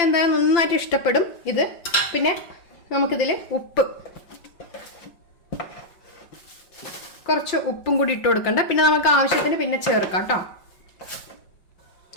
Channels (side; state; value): right; late; 5.7 ms